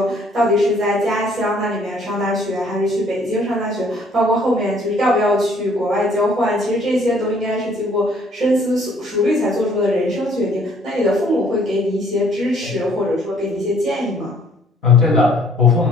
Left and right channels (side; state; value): both; normal; correlation 0.61